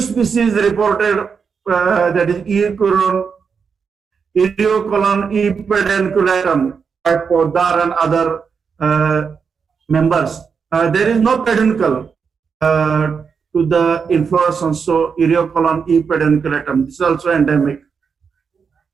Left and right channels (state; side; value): quieter; left; 6.0 dB